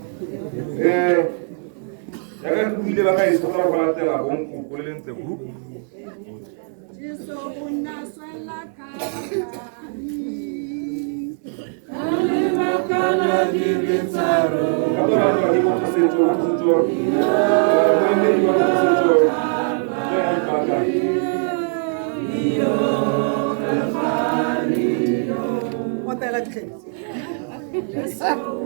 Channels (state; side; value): silent; left; 58 dB below the other